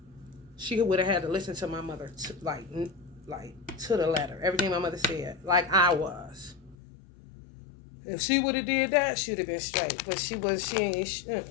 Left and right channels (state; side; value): drops out; right; at 6.8 s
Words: She would have had to listen to my mother like to the letter. Everything my mother said, like I was. If she would have did that, she would have been straight. But she ain't.